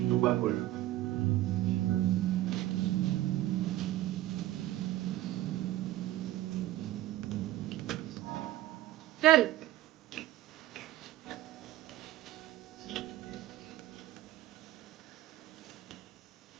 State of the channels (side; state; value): left; quieter; 15.2 dB